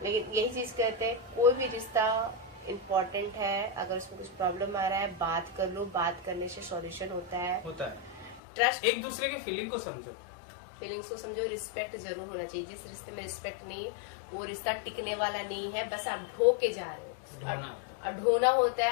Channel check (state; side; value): drops out; right; at 8.4 s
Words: लेकिन यही चीज कहते हैं, कोई भी रिश्ता इम्पोर्टेंट है, अगर उसमें कुछ प्रॉब्लम आ रहा है बात कर लो, बात करने से सॉल्यूशन होता है। ट्रस्ट, एक दूसरे के फीलिंग को समझो, फीलिंग्स को समझो, रिस्पेक्ट जरूर होना चाहिए। जिस रिश्ते में रिस्पेक्ट नहीं, वो रिश्ता टिकने वाला नहीं है, बस आप ढो के जा रहे हो और ढोना होता